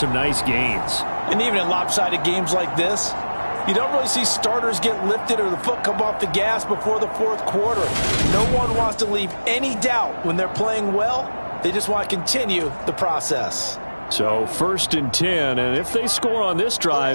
nice gains. And even in lopsided games like this, you don't really see starters get lifted or the foot come off the gas before the fourth quarter. No one wants to leave any doubt when they're playing well. They just want to continue the process. So 1st and 10, and if they score on this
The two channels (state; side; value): inverted; both; correlation -1.00